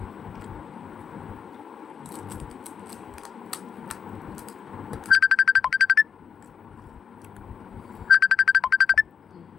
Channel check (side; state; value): right; quieter; 7.2 dB